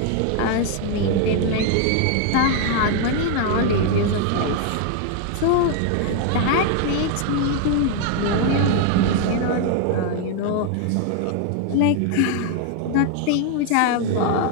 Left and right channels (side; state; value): both; different; correlation 0.00